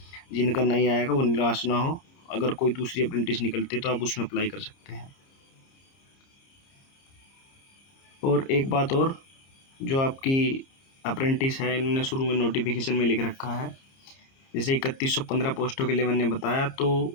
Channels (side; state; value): right; late; 30 ms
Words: जिनका नहीं आएगा वो निराश ना हो। अगर कोई दूसरी अप्रेंटिस निकलती है तो आप उसमें अप्लाई कर सकते हैं। और एक बात और, जो आपकी अप्रेंटिस है, इन्होंने शुरू में नोटिफिकेशन में लिख रखा है, जैसे 3115 पोस्टों के लिए मैंने बताया,